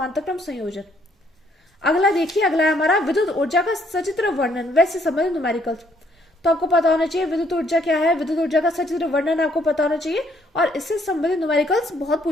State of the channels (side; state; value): both; normal; correlation 0.67